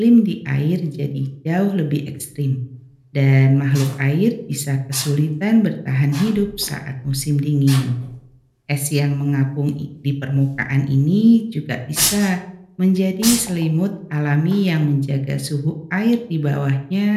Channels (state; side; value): identical; both; correlation 1.00